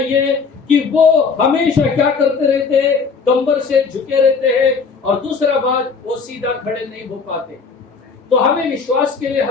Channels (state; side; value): quieter; right; 5.2 dB